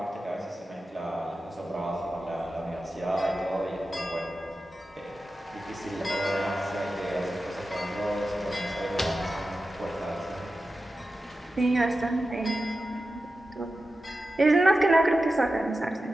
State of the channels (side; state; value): both; normal; correlation 0.92